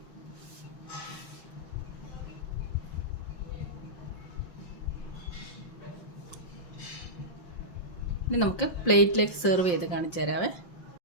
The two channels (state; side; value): late; right; 5.7 ms